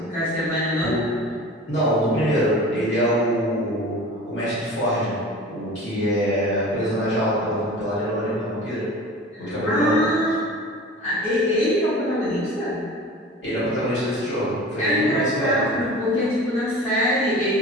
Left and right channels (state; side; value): normal; both; correlation 0.39